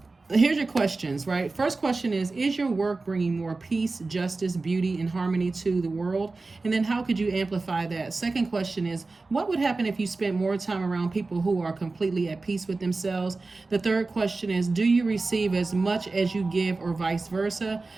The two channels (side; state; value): left; quieter; 3.6 dB